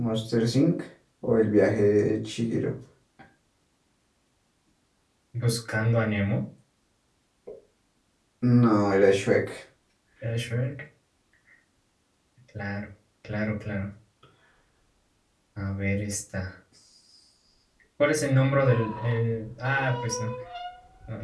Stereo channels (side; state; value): both; identical; correlation 1.00